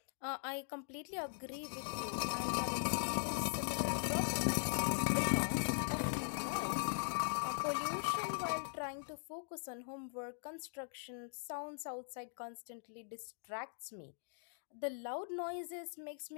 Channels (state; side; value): silent; right; digital silence